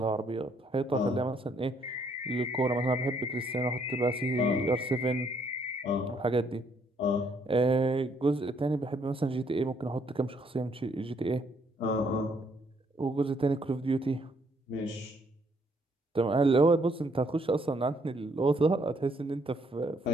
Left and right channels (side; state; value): both; normal; correlation 0.69